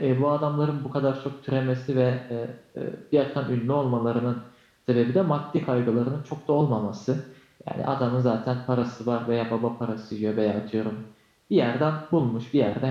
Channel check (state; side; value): identical; both; correlation 1.00